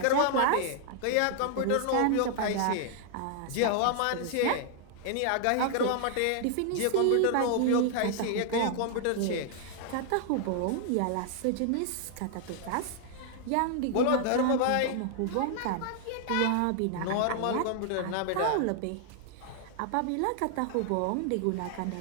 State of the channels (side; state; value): both; different; correlation 0.00